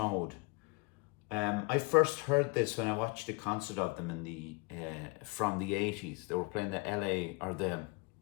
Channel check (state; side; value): quieter; right; 28.4 dB